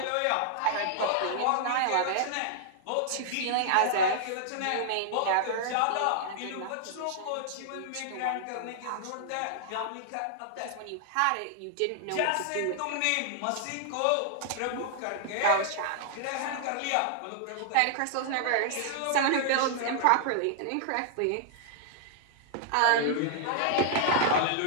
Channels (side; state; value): both; different; correlation -0.01